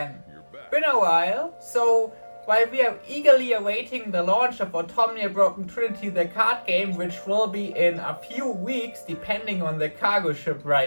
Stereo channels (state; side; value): inverted; both; correlation -1.00